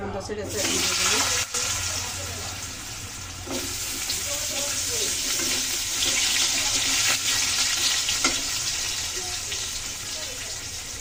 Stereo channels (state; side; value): identical; both; correlation 1.00